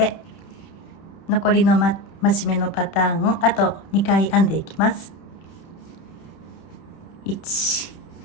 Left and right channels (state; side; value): late; right; 31 ms